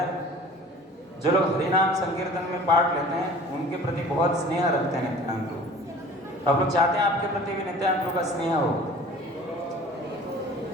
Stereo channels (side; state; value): both; normal; correlation 0.45